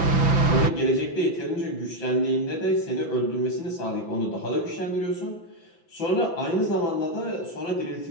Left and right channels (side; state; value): right; late; 5.9 ms